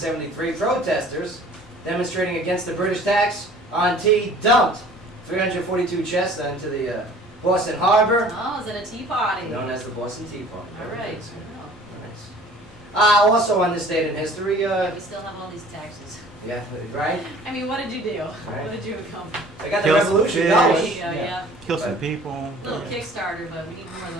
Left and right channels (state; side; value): normal; both; correlation 0.50